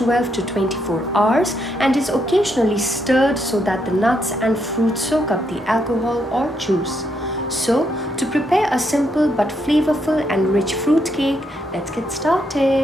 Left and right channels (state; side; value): normal; both; correlation 0.77